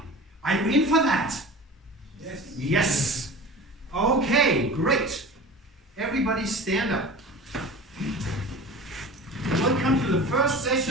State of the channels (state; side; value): normal; both; correlation 0.37